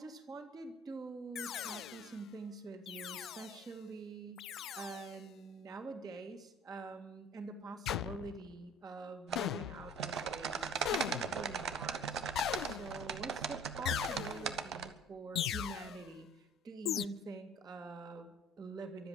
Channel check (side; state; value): both; normal; correlation 0.48